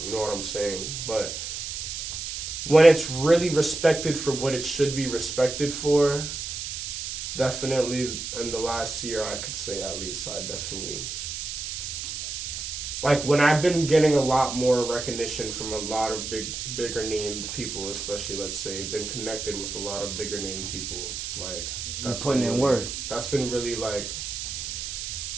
You know what I'm saying? But when it's really respected for what it should be respected for, definitely in the last year, I could say at least, I definitely, like, when I've been getting a lot more recognition from a lot of bigger named people, especially, let's say, been connected with a lot of bigger named people, like, that's putting in work. That's been really, like,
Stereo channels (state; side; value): noise; right; hiss, 5 dB below the sound